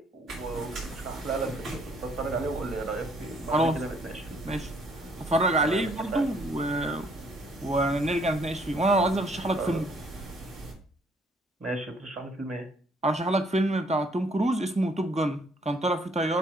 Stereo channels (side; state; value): both; normal; correlation 0.64